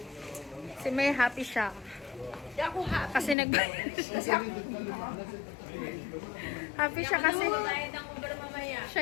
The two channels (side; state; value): right; drops out; at 3.4 s